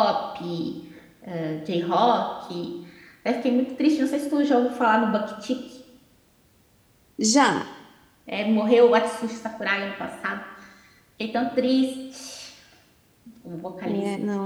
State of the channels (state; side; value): identical; both; correlation 1.00